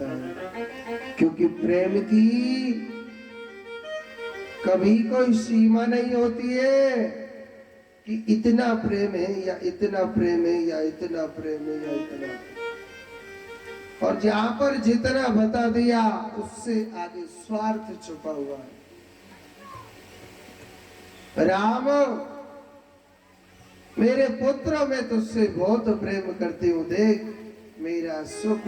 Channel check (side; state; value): both; identical; correlation 1.00